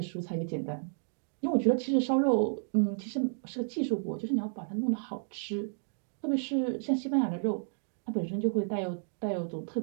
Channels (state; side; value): silent; left; digital silence